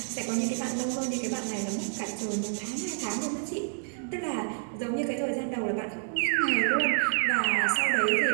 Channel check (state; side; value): silent; left; digital silence